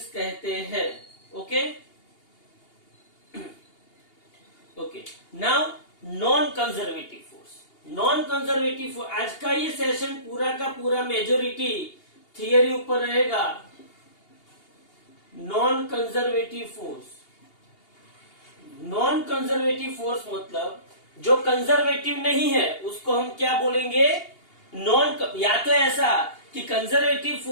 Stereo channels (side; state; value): right; late; 2.8 ms